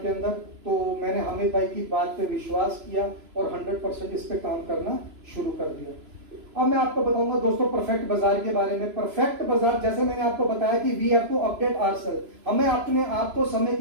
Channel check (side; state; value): left; late; 3.0 ms